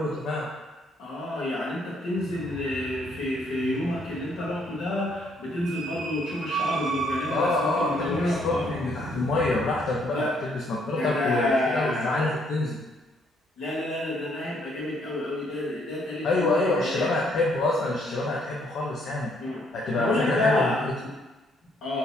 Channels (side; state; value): both; normal; correlation 0.69